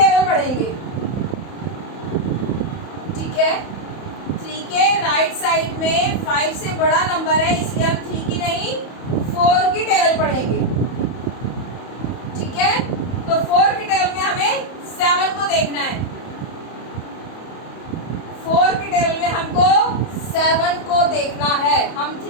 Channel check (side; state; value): right; late; 31 ms